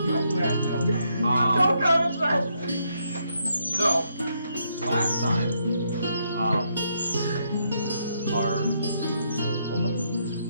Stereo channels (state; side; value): inverted; both; correlation -0.76